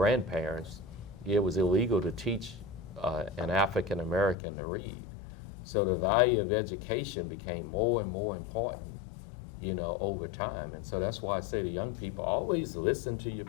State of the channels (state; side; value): drops out; right; at 4.4 s